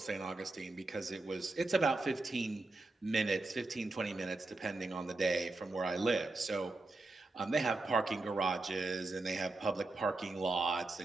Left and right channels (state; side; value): quieter; left; 3.2 dB